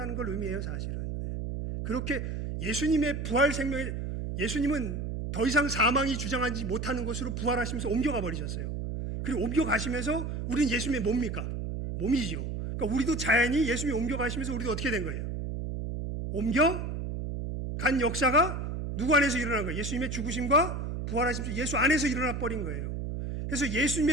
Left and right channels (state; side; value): noise; right; hum, 4 dB below the sound